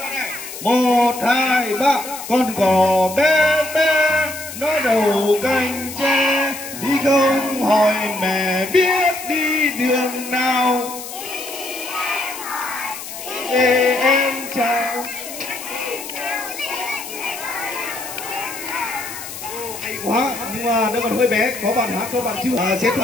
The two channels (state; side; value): noise; left; hiss, 10 dB below the sound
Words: đầu này. 1, 2, 3. Con cò bé bé nó đầu cành tre, đi không hỏi mẹ biết đi đường nào. Để em chào. Hay quá, nhưng mà nó còn hơi bé. Có bạn hát, có bạn chưa xếp